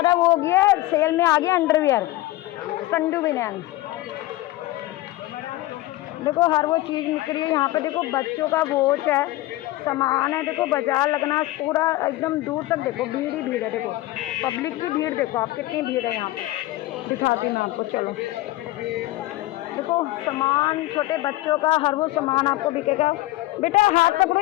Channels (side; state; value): right; quieter; 17.4 dB